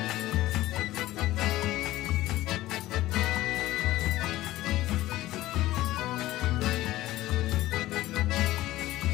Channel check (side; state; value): right; quieter; 16.3 dB